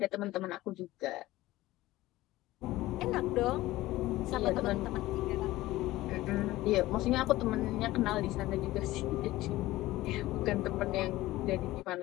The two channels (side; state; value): right; quieter; 17.2 dB